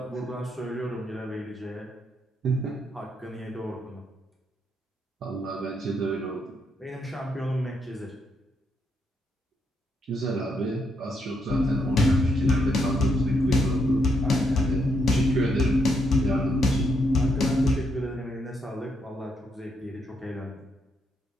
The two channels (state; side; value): normal; both; correlation 0.77